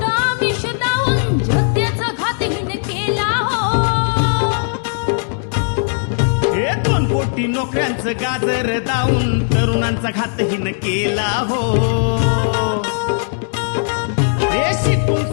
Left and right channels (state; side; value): silent; right; digital silence